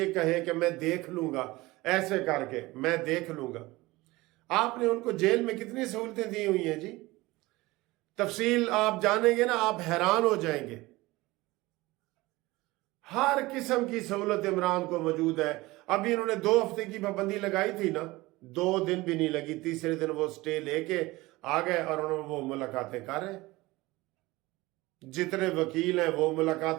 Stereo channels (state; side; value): quieter; left; 20.4 dB